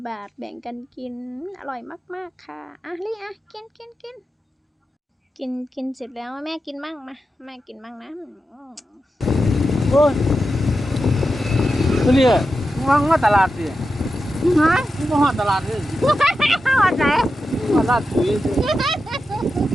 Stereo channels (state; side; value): normal; both; correlation 0.90